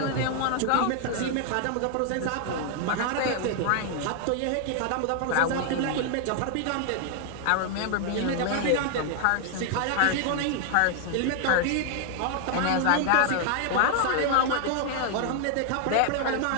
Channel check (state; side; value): different; both; correlation 0.00